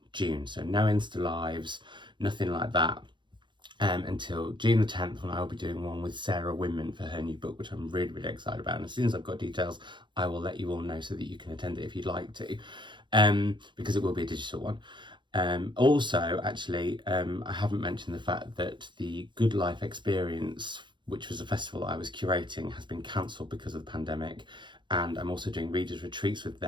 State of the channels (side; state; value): left; late; 0.23 ms